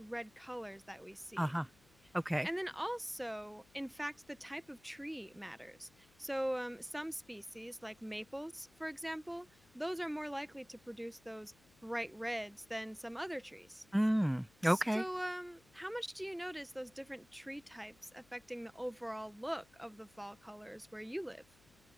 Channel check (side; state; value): left; noise; hum, 28 dB below the sound